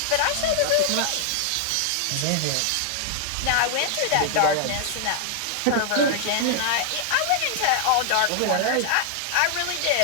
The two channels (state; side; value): different; both; correlation 0.00